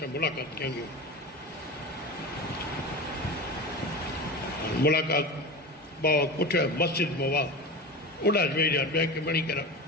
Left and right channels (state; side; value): normal; both; correlation 0.29